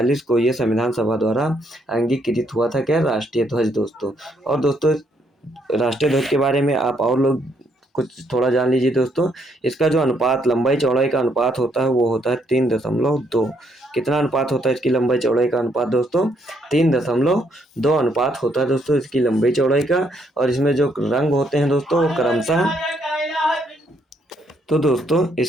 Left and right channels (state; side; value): normal; both; correlation 0.72